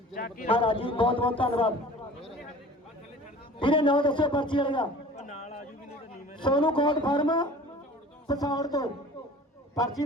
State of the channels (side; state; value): both; normal; correlation 0.43